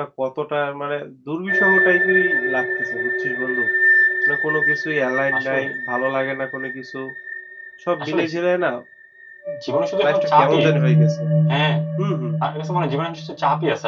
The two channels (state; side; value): identical; both; correlation 1.00